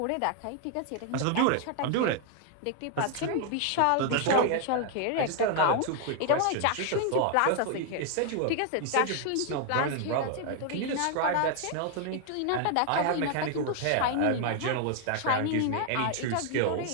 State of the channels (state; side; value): different; both; correlation 0.00